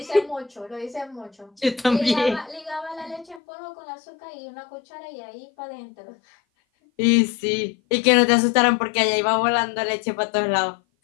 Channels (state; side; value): drops out; right; at 3.4 s